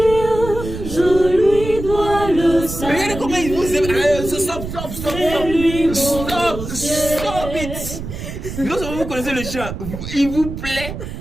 je lui dois le salut. Regardez comment il vous aime. Stop it. Non seulement vous connaissez le chant, il vous plaît,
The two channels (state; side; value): noise; right; rumble, 8 dB below the sound